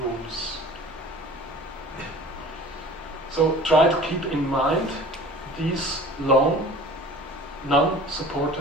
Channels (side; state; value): both; normal; correlation 0.43